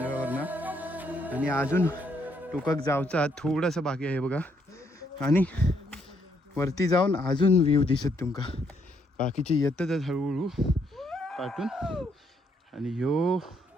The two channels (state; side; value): normal; both; correlation 0.73